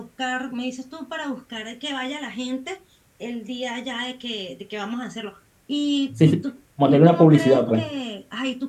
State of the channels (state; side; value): identical; both; correlation 1.00